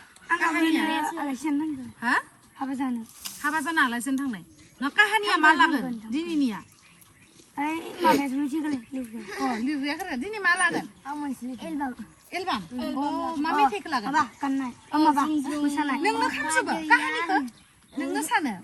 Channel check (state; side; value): identical; both; correlation 1.00